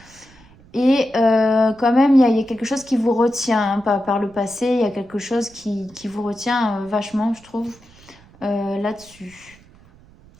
Et quand même, il y a quelque chose qui vous retient, hein, par le passé, il y a quelque chose qui vous retient vachement, je trouve, là-dessus.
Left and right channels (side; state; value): right; noise; rumble, 26 dB below the sound